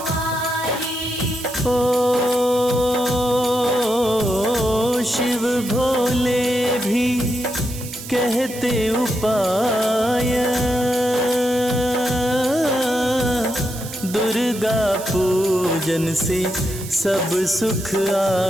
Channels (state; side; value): noise; right; hiss, 12 dB below the sound